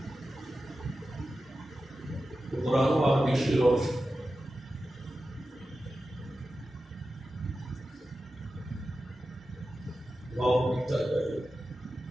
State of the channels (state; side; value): normal; both; correlation 0.93